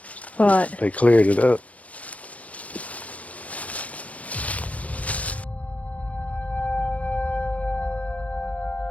Right. they cleared it up.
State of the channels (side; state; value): right; late; 0.067 ms